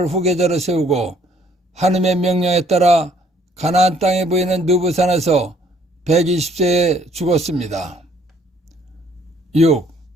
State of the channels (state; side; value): normal; both; correlation 0.63